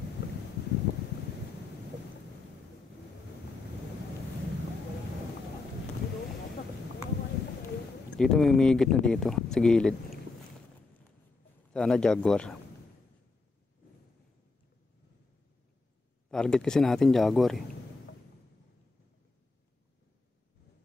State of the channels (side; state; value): right; quieter; 3.6 dB